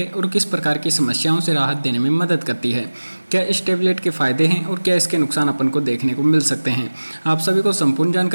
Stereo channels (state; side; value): inverted; both; correlation -1.00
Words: और किस प्रकार की समस्याओं से राहत देने में मदद करती है, क्या इस टैबलेट के फ़ायदे हैं और क्या इसके नुकसान अपन को देखने को मिल सकते हैं। आप सभी को संपूर्ण